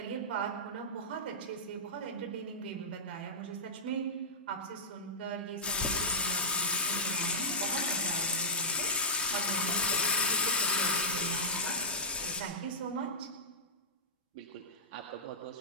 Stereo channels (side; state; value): both; normal; correlation -0.13